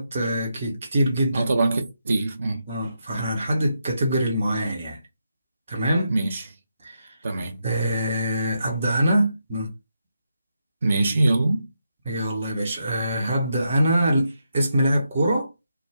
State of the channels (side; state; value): both; inverted; correlation -0.82